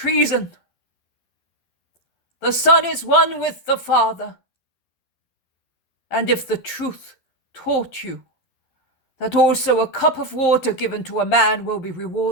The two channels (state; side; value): late; right; 11 ms